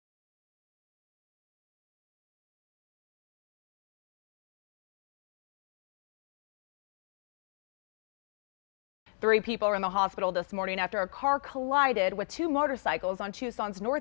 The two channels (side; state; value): right; silent; digital silence